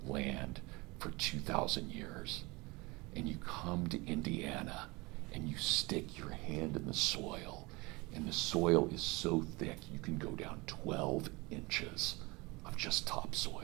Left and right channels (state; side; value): quieter; left; 24.6 dB